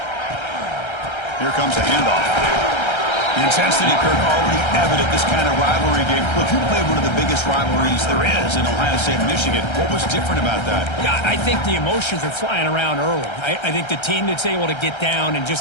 Here comes a handoff. The intensity, Kirk, already evident this kind of rivalry game. Look, you played one of the biggest rivalries there is in Ohio State and Michigan. What was different about that? Yeah, I think the emotions are flying around early. I think the team that's able to get down and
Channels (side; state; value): right; late; 1.3 ms